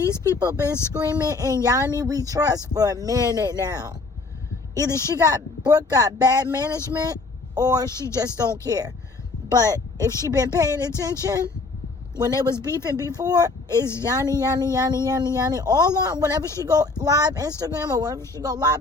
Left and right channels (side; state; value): right; quieter; 3.7 dB